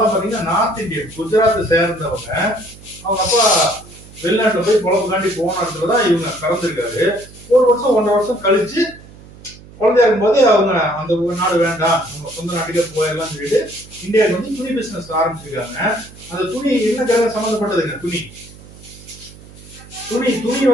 பாத்தீங்கன்னா நார்த் இந்தியன், குஜராத்தை சேர்ந்தவங்க. அவங்க அப்பா வெளிநாட்டுல போய் பொழப்புக்காண்டி போன இடத்துலதான் இவங்க பிறந்திருக்காரு. 1 வருஷம் 1.5 வருஷம் கழிச்சு குழந்தையா இருக்கும்போது அவங்க அந்த நாடு வேண்டாம், நம்ம சொந்த நாட்டுக்கே போயிடலாம் சொல்லிட்டு இந்தியாவுக்கு வந்து துணி பிசினஸ் ஆரம்பிச்சிருக்காங்க. அந்த துணி என்ன கிரகம் சம்பந்தப்பட்டதுங்க? துணி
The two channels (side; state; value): right; noise; hum, 20 dB below the sound